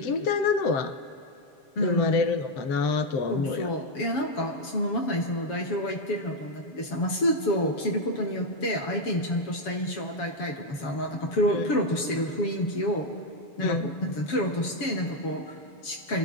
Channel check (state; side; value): late; right; 7.2 ms